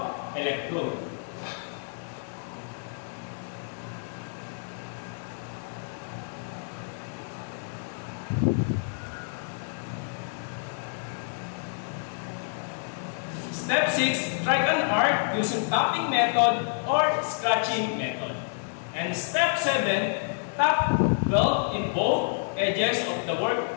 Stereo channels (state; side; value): silent; right; digital silence